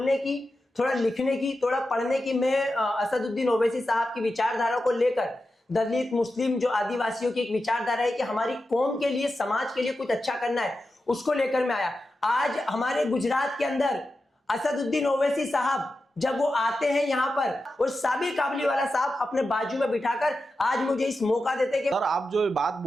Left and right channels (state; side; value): normal; both; correlation 0.91